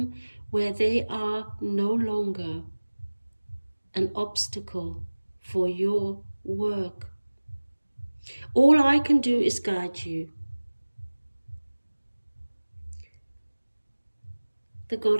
where they are no longer an obstacle for your work. All I can do is guide you. The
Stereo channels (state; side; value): inverted; both; correlation -1.00